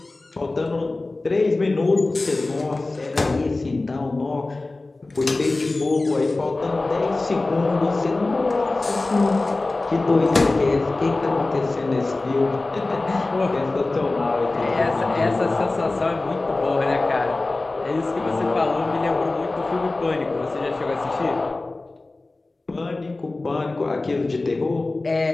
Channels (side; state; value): right; quieter; 3.2 dB